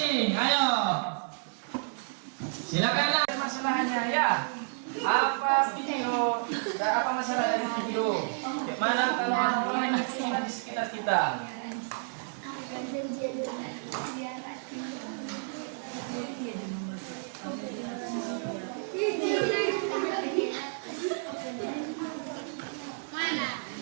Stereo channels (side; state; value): left; silent; 57 dB below the other